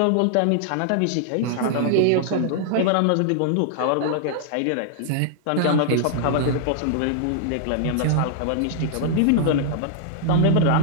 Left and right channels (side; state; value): both; different; correlation -0.01